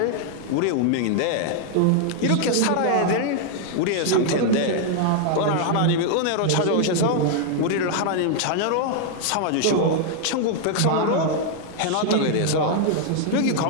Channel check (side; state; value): both; different; correlation 0.00